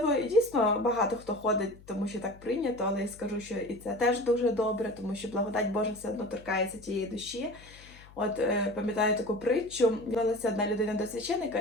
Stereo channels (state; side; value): noise; left; hum, 22 dB below the sound